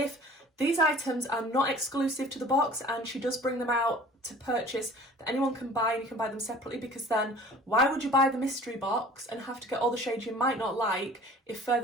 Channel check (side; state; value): both; normal; correlation 0.47